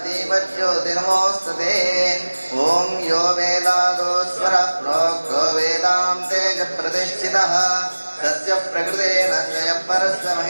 दीपज्योतिर्नमोऽस्तुते ओम यो वेदादो स्वरः प्रोक्तो वेदान्ते च प्रतिष्ठितः तस्य प्रकृतेन स्वयं परस्य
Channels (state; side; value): inverted; both; correlation -1.00